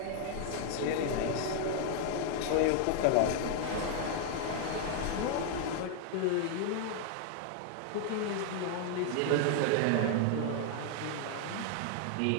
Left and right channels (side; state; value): both; different; correlation 0.00